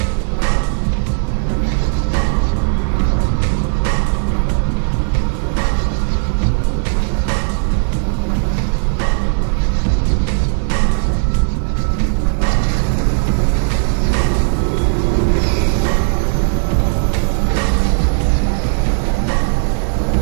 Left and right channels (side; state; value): left; silent; digital silence